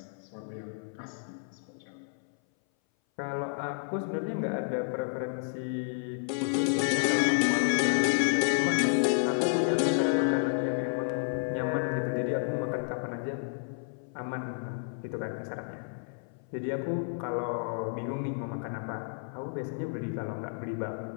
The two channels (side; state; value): right; silent; 57 dB below the other